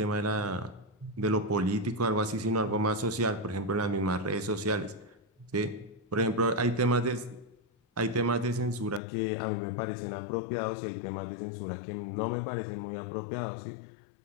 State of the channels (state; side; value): drops out; right; at 9.0 s